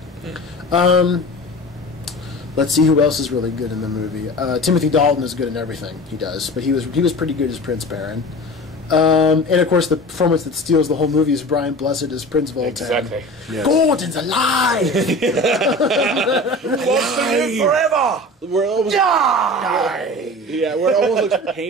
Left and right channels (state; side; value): normal; both; correlation 0.36